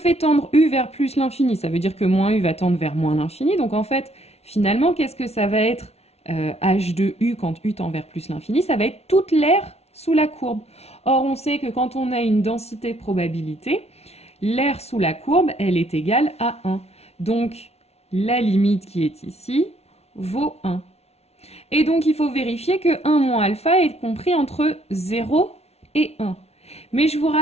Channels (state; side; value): late; right; 0.31 ms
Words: tendre u vers plus l'infini, ça veut dire que moins u va tendre vers moins l'infini. Donc en fait, finalement, qu'est-ce que ça va être h de u quand u tend vers plus l'infini? Ça va être toute l'aire sous la courbe. Or, on sait que quand on a une densité de probabilité, l'aire sous la courbe, elle est égale à 1. Donc, la limite qui est ici vaut 1. Et donc, il faut vérifier que 1 moins alpha est compris entre 0 et 1. Mais je vous